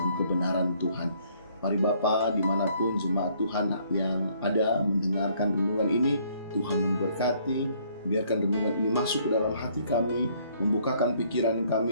kebenaran Tuhan. Mari Bapa, dimanapun jemaat Tuhan yang ada mendengarkan renungan ini, Tuhan memberkati. Biarkan renungan ini masuk ke dalam hati kami, membukakan pikiran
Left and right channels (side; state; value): both; inverted; correlation -0.64